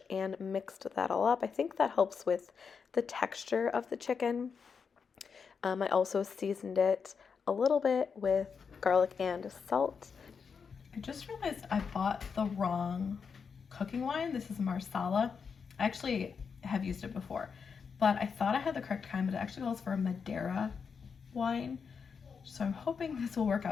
and mixed that all up. I think that helps with the texture of the chicken. I also seasoned it a little bit with garlic and salt. I just realized I bought the wrong cooking wine. This is Marsala. I actually have used it before, but I thought I had the correct kind, but it actually calls for a Madeira wine. So I'm hoping this will work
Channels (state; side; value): quieter; right; 6.0 dB